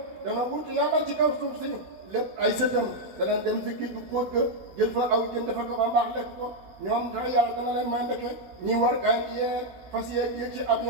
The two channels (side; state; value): left; late; 16 ms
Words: dana wut yàlla ci kaw suuf si lépp ay sëtam danañ dem si kii du póot ga jël fa aw jën defar ko ba mbaax lekk ko ñoom sax yàlla dana leen may ndeke ñi war gaay yeeg fas yeeg yéeg ci